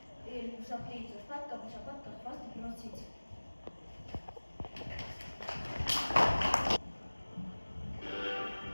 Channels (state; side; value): inverted; both; correlation -1.00